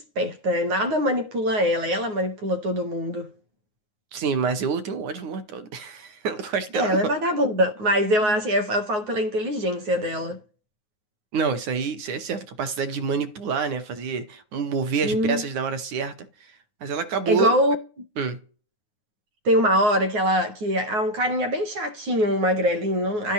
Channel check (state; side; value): late; left; 9.6 ms